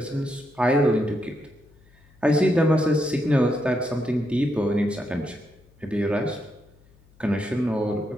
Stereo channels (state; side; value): noise; left; hum, 29 dB below the sound